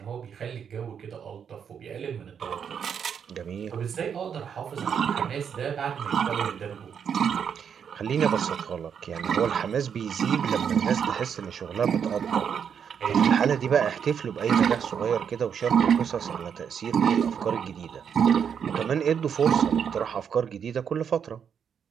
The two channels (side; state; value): left; quieter; 7.6 dB